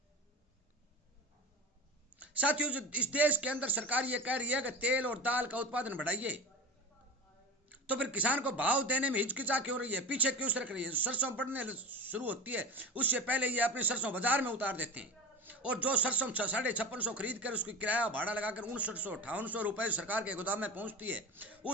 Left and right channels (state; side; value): normal; both; correlation 0.30